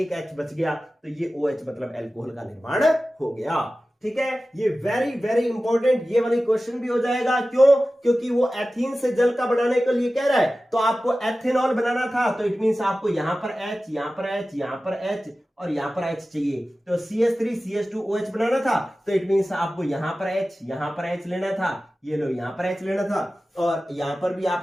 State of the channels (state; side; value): normal; both; correlation 0.95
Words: H बच गया, तो ये OH मतलब एल्कोहल का निर्माण हो गया। ठीक है, ये वेरी वेरी इंपॉर्टेंट, ये वाली क्वेश्चन भी हो जाएगा। क्यों, क्योंकि वो एथीन से जल का बनाने के लिए कह रहा है, तो आपको एथेनॉल बनाना था, तो इट मींस आपको यहां पर H, यहां पर H, यहां पर H और यहां पर H चाहिए। तो CH3 CH2OH बनाना था, तो इट मींस आपको यहां पर H, यहां पर H लेना था, ये लो यहां पर H लेना था, और यहां पर भी